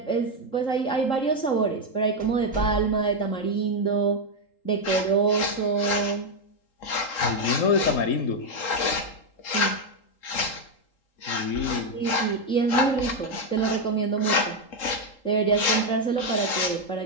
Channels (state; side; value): late; right; 3.8 ms